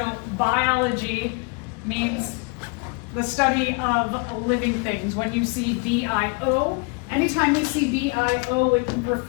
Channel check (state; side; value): quieter; right; 31.3 dB